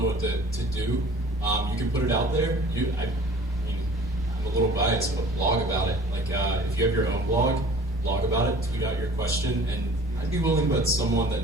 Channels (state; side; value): normal; both; correlation 0.47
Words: know what to do, you can put it out there. I'm a little biased, but blog about it. Like if you have your own blog about it, tweet out your question, and I'd be willing to bet someone that